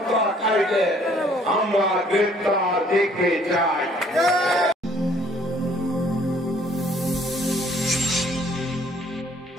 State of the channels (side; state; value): both; normal; correlation 0.60